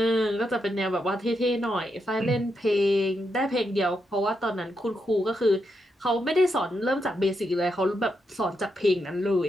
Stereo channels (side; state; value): both; normal; correlation 0.83